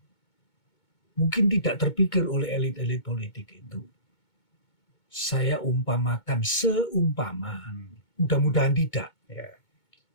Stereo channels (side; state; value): right; late; 2.2 ms